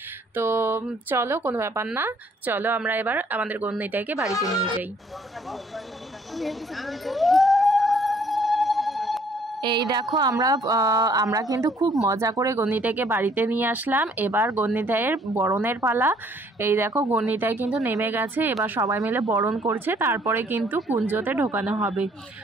তো চলো, কোনো ব্যাপার না, চলো আমরা এবার আমাদের গন্নিতাইকে বাড়িতে নিয়ে যাই। এই দেখো, আমরা কিন্তু খুব মজা করে গন্নিতাইকে বাড়িতে নিয়ে আসলাম। এবার গন্নিতাইয়ের বরণের পালা। এই দেখো, গন্নিতাই কিন্তু নেমে গেছে, এবার সবাই মিলে বরণ করছে, তারপরে কিন্তু কুঞ্জতে ঢোকানো হবে।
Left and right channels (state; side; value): normal; both; correlation 0.62